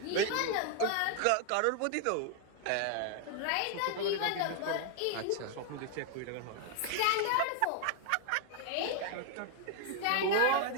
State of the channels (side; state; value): both; different; correlation 0.00